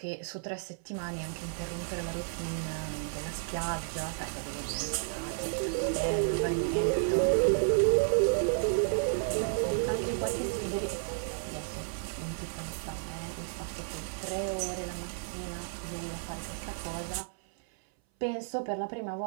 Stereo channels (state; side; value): silent; left; 56 dB below the other